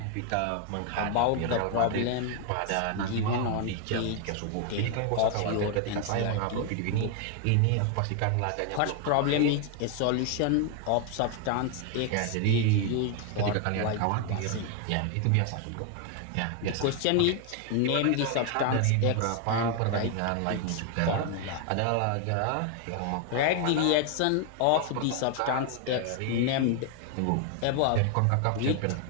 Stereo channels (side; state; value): both; different; correlation 0.00